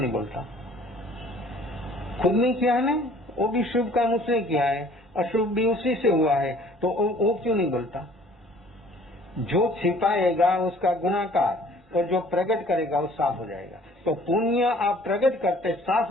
बोलता? खुद नहीं किया है ना, वो भी शुभ काम उसने किया है, अशुभ भी उसी से हुआ है, तो वो क्यों नहीं बोलता? जो छिपाएगा उसका गुनाहगार, और जो प्रकट करेगा वो साफ हो जाएगा। तो पुण्य आप प्रकट करते साफ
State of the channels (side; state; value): both; normal; correlation 0.53